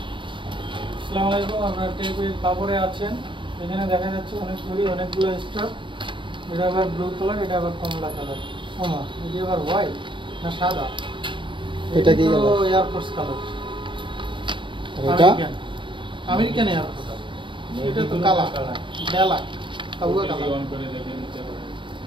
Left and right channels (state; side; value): late; left; 0.24 ms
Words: আসসালামু আলাইকুম, আপনারা টেপের কাপড়ে আছেন। এখানে দেখা যাচ্ছে অনেকগুলো স্টক। এটা আবার ব্লু কালার, এটা আবার কমলা কালার। ওমা, এটা আবার হোয়াইট না সাদা? এটা কি কালার? Air force colour. এটা আমেরিকান এয়ারফোর্স। এটা তো কালা বেলা কাউয়া কালার। অন করে দেখেন নিতে হবে।